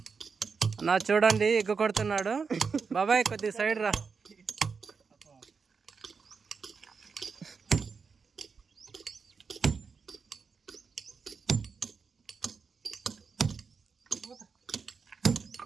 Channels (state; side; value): quieter; left; 5.3 dB